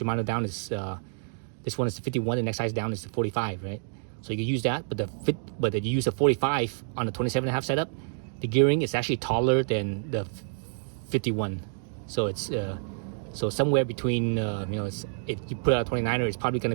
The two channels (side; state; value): left; silent; digital silence